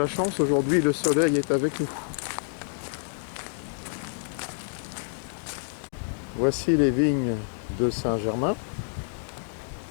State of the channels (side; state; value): right; silent; digital silence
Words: chance aujourd'hui, le soleil est avec nous. Voici les vignes de Saint-Germain.